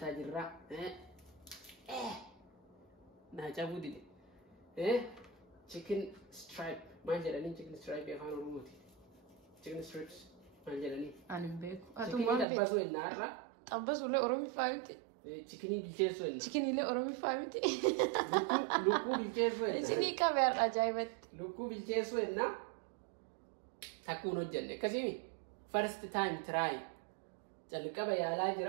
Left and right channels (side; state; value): left; drops out; at 12.5 s